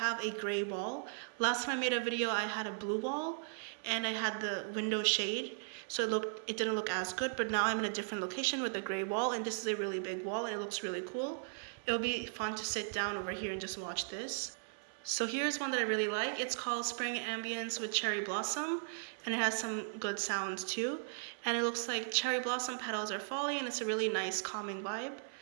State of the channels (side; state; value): left; silent; 53 dB below the other